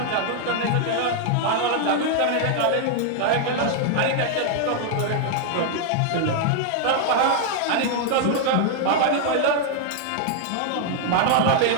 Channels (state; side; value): different; both; correlation 0.00